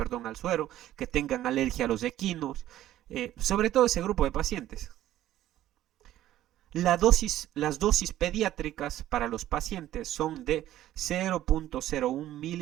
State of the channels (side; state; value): left; quieter; 13.3 dB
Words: al suero, que tengan alergia a los equinos, sobre todo ese grupo de pacientes. Las dosis pediátricas para los pacientes son de 0.01